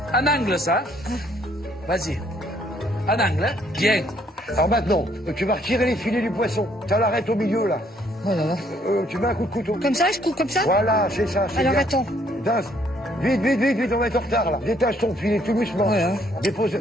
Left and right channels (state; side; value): normal; both; correlation 0.66